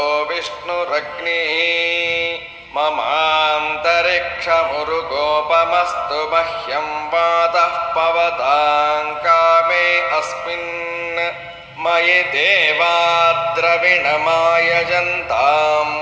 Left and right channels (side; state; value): both; identical; correlation 1.00